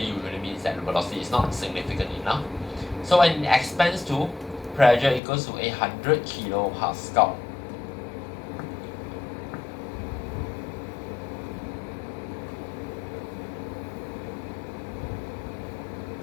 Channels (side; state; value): right; drops out; at 5.2 s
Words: usually means that the velocity is not significant enough. So when it expands to pressure equals to 800 kilopascal.